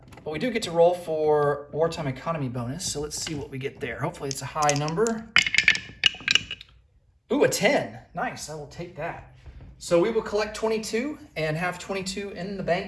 we do get to roll for wartime economy bonus, so let's see what we get there. Hopefully it's a high number. Ooh, a 10. Nice, I will take that. So we will collect 22 and have 22 in the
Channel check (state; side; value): identical; both; correlation 1.00